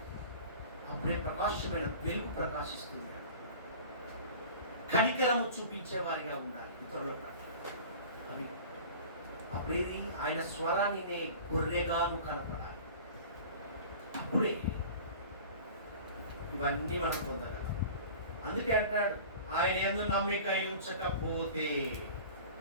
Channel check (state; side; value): inverted; both; correlation -0.40